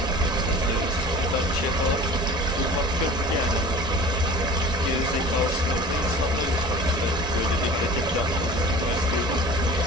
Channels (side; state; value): both; normal; correlation 0.41